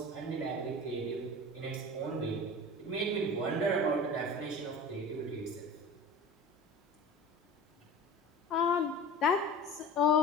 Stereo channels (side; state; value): both; normal; correlation 0.36